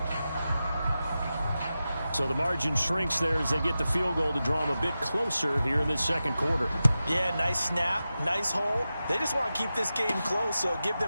So the margin shrinks there as they get the field goal to draw them a bit closer here in this 2nd quarter. Yeah, nice snap, nice hold. They just want to keep this game close, so give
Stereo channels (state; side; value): inverted; both; correlation -0.93